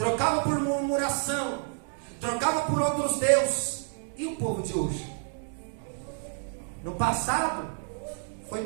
por murmuração, trocava por outros deuses. E o povo de hoje? No passado foi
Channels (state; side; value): silent; left; 57 dB below the other